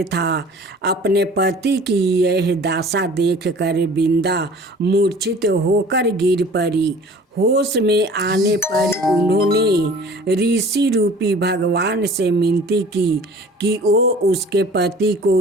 था। अपने पति की यह दशा देखकर बिंदा मूर्छित होकर गिर पड़ी। होश में आने पर उन्होंने ऋषि रूपी भगवान से विनती की कि वो उसके पति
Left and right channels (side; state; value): both; normal; correlation 0.47